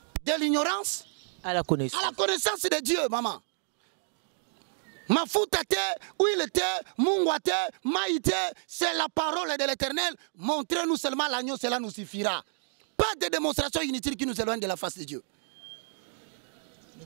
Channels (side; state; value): left; silent; digital silence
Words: De l'ignorance à la connaissance de Dieu, maman. Mafuta te, huile te, mungwa te, maïté, c'est la parole de l'Éternel. Montrez-nous seulement l'agneau, cela nous suffira. Pas de démonstration inutile qui nous éloigne de la face de Dieu.